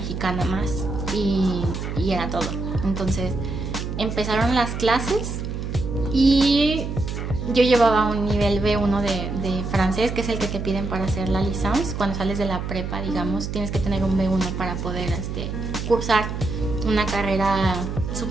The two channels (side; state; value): right; noise; hum, 5 dB below the sound